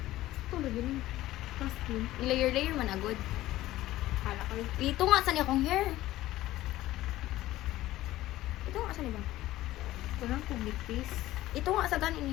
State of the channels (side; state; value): right; quieter; 15.7 dB